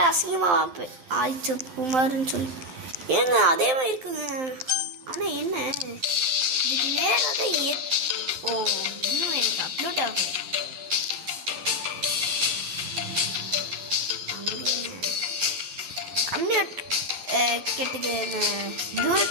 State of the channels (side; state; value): left; late; 11 ms